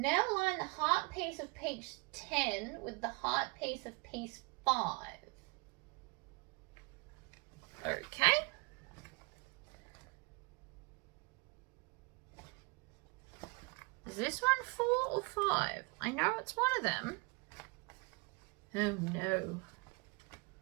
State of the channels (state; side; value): quieter; left; 27.8 dB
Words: line the heart piece of piece 10 with the heart piece of piece 5. Okay. Is this one 4 or 5? I know it's one of them. Oh no.